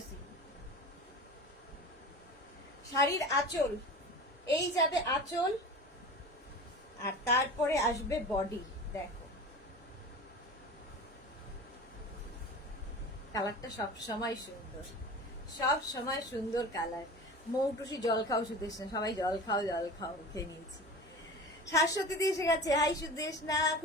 শাড়ির আঁচল, এই যাবে আঁচল, আর তারপরে আসবে বডি। দেখো কালারটা সব সময় সুন্দর, সব সময় সুন্দর কালার। মৌটুসি জল খাও সুদেশনা, সবাই জল খাও জল খাও, খেয়ে নিয়েছি। শাশ্বতী দি এসে গেছে, হাই সুদেশনা,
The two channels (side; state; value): both; normal; correlation 0.35